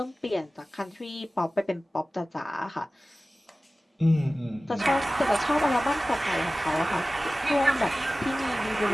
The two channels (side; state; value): both; normal; correlation 0.97